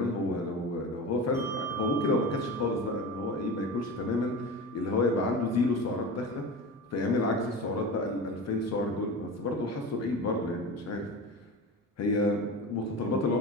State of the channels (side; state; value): both; normal; correlation 0.29